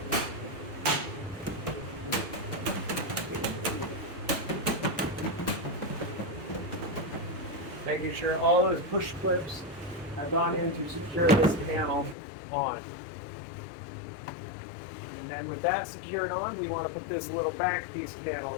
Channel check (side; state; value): right; drops out; at 12.2 s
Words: Making sure all those push clips have gone in to secure this panel on. And with that secured on, we want to put this little back piece panel